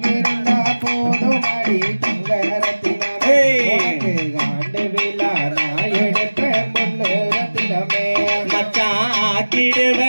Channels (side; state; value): both; inverted; correlation -1.00